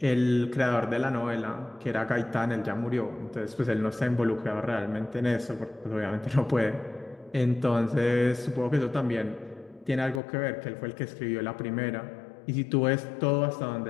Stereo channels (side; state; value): right; drops out; at 10.2 s